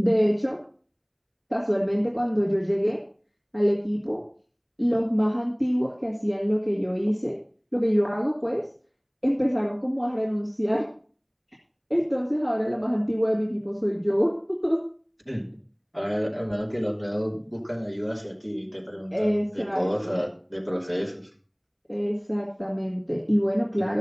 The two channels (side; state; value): both; identical; correlation 1.00